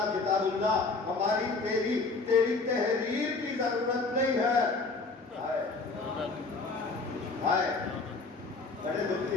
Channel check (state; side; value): quieter; right; 3.9 dB